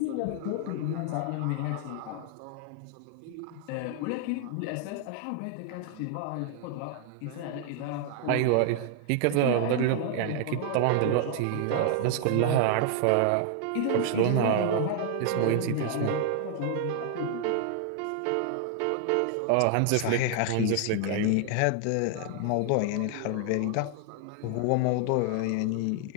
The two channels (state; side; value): different; both; correlation 0.00